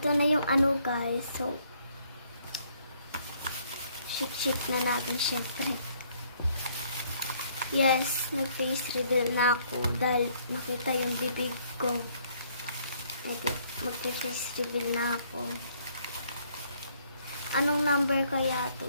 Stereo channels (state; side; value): inverted; both; correlation -0.65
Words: na yung ano guys. So shake na natin syempre. Yes, nag-face reveal na ako dahil nakita yung bibig ko. Mag-face reveal na ako. Anong number kaya to